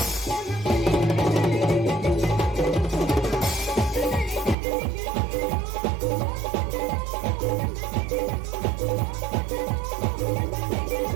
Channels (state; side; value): drops out; left; at 4.5 s